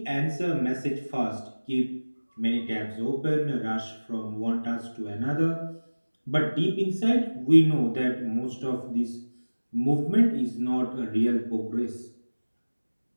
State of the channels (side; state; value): both; inverted; correlation -1.00